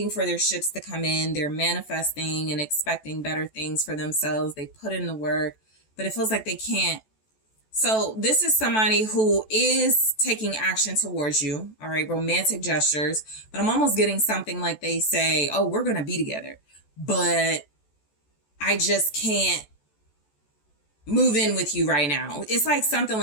for their ships to come in. They're manifesting and expecting better things for themselves. They put in the work, but it feels like they can't. So this is somebody who is taking action towards you. All right, romantic gestures. But I'm almost getting something like they say, oh, we're going to be together, but I just can't move in with you right now. It's like something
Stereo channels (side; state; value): right; late; 14 ms